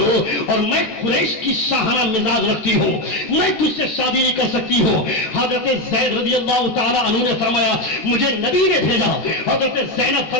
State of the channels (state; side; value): late; right; 14 ms